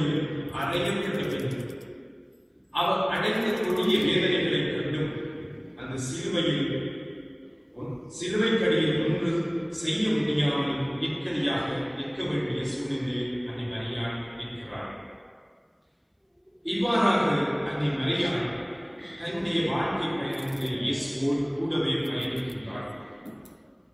அடையப்பட்ட பின் அவர் அடைந்த கொடிய வேதனைகளை கண்டும் அந்த சிலுவையில் சிலுவைக்கடியில் ஒன்று செய்ய முடியாமல் இக்கடியாக நிற்க வேண்டிய சூழ்நிலையில் அன்னை மரியாள் இருக்கிறார். இவ்வாறாக அன்னை மரியாள் தன்னுடைய வாழ்க்கை பயணத்தில் இயேசுவோடு கூடவே பயணிக்கின்றார்.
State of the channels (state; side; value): identical; both; correlation 1.00